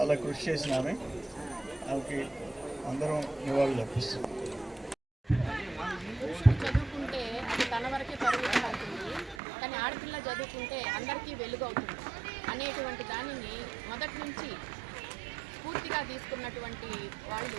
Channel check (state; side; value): drops out; left; at 9.3 s